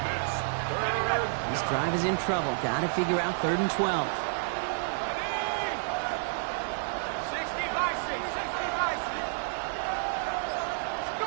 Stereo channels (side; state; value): left; silent; digital silence